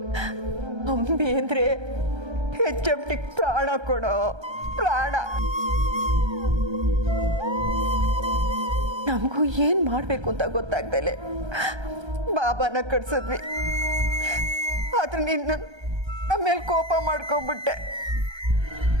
ಅಂಬಿ ಅಂದ್ರೆ HMT ಪ್ರಾಣ ಕೊಡೋ ಪ್ರಾಣ. ನಮಗೂ ಏನ್ ಮಾಡ್ಬೇಕು ಅಂತ ಗೊತ್ತಾಗ್ದಲೆ ಬಾಬಾನ ಕಟ್ಸಿದ್ವಿ. ಆದ್ರೆ ನಿನ್ನ ನಮ್ಮ ಮೇಲೆ ಕೋಪ ಮಾಡ್ಕೊಂಡ್ಬಿಟ್ಟೆ.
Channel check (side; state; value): left; late; 1.3 ms